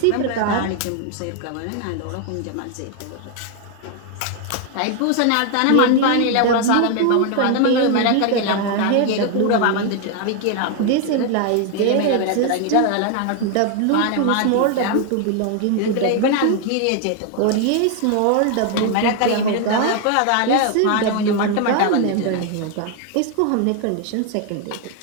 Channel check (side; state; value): both; different; correlation 0.00